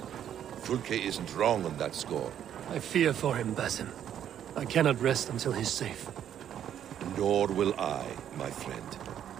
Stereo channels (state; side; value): quieter; left; 9.9 dB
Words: Fulke isn't wrong on that score. I fear for him, Basim. I cannot rest until he's safe. Nor will I, my friend.